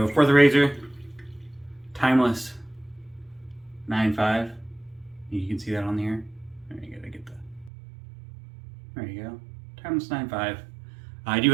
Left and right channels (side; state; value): left; drops out; at 7.7 s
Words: for the razor, Timeless 9.5. You can see that on here. There you go. There you go. Timeless 9.5. I do